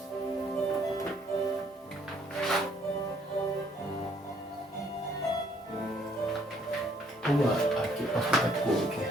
Vamos lá. Aqui, posso botar de cor aqui.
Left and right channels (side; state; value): both; normal; correlation 0.65